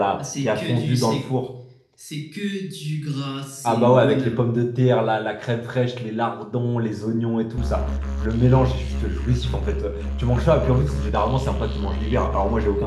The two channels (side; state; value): both; identical; correlation 1.00